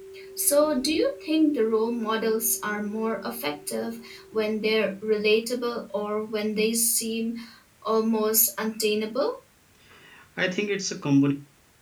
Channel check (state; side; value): identical; both; correlation 1.00